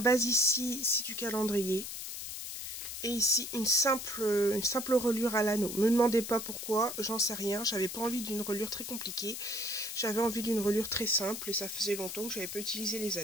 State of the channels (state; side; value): noise; left; hiss, 7 dB below the sound